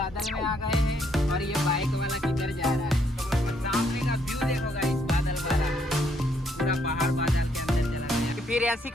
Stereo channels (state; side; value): normal; both; correlation 0.71